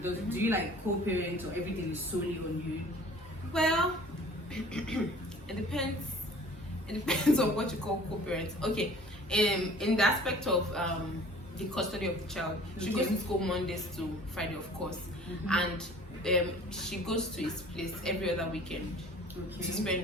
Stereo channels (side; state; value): both; normal; correlation 0.49